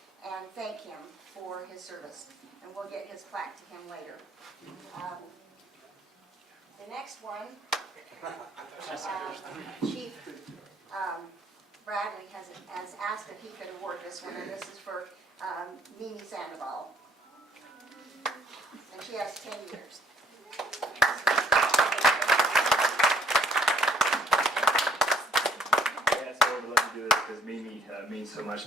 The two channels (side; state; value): both; normal; correlation 0.62